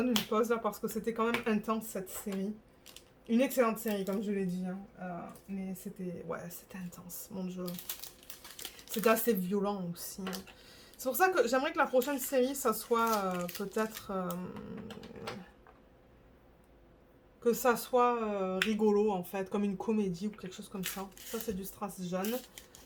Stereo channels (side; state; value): both; identical; correlation 1.00